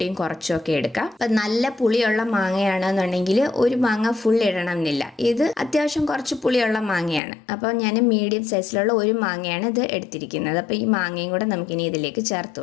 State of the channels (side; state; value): right; drops out; at 7.2 s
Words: കുറച്ചൊക്കെ എടുക്കാം. അപ്പം നല്ല പുളിയുള്ള മാങ്ങയാണെന്നുണ്ടെങ്കിൽ ഒരു മാങ്ങ ഫുൾ ഇടണം എന്നില്ല. ഇത് അത്യാവശ്യം കുറച്ച് പുളിയുള്ള മാങ്ങയാണ്. അപ്പോൾ ഞാൻ മീഡിയം സൈസിലുള്ള ഒരു മാങ്ങയാണ് ഇത് എടുത്തിരിക്കുന്നത്. അപ്പോൾ ഈ മാങ്ങയും കൂടെ നമുക്കിനി ഇതിലേക്ക് ചേർത്ത്